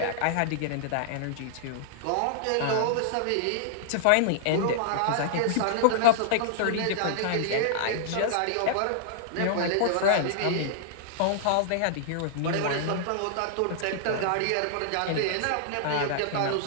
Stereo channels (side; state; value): both; different; correlation -0.01